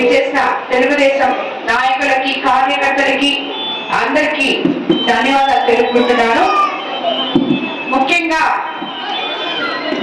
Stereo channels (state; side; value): identical; both; correlation 1.00